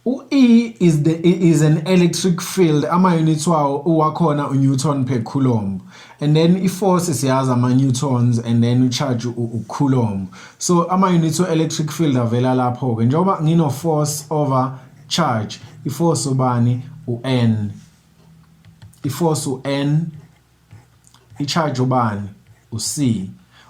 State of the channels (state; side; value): identical; both; correlation 1.00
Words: E is an electric field, ama units wakhona Newton per Coulomb, and then i-force siyazi ama-newtons, and then u-charge u-Coulomb. So ama units electric field avela lapho ke njengoba ngino force over charge, i-force ubani u-N, i-force u-N, i-charge ubani u-C.